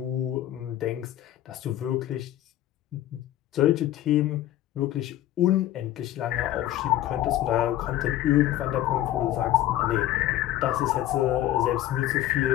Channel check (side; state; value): right; quieter; 13.5 dB